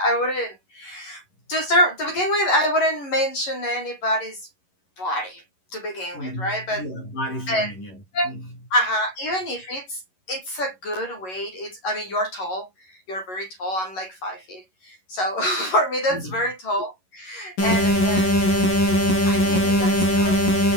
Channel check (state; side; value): late; right; 11 ms